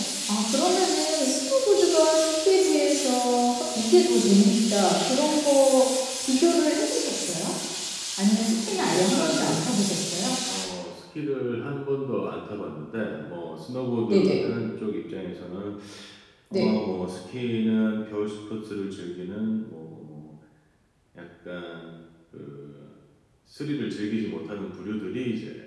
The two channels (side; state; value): both; identical; correlation 1.00